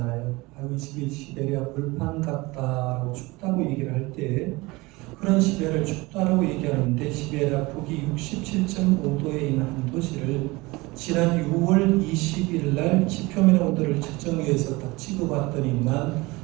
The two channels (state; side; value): quieter; left; 22.7 dB